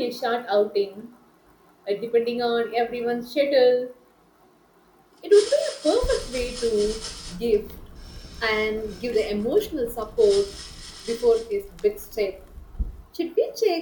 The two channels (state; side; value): identical; both; correlation 1.00